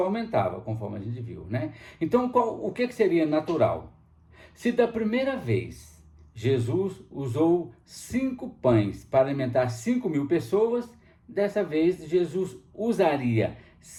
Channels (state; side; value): identical; both; correlation 1.00